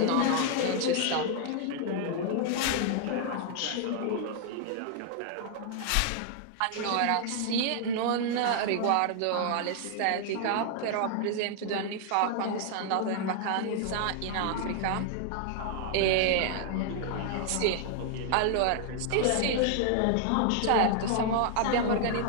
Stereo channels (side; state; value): both; different; correlation 0.00